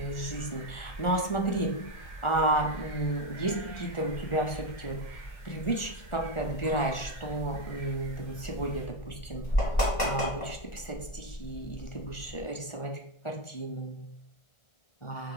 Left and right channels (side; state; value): right; late; 1.4 ms